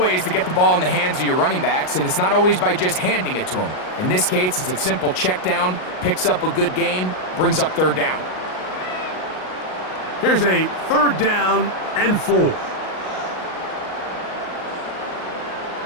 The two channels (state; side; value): late; right; 38 ms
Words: to get the ball in the hands of your running backs, and it's not always by just handing it to them. In this case, it's a simple check down, picks up a good gain, brings up 3rd down. Here's a 3rd down and 4.